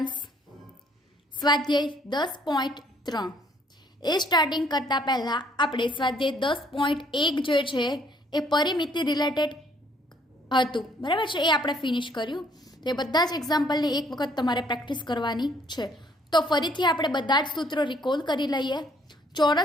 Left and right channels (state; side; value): normal; both; correlation 0.64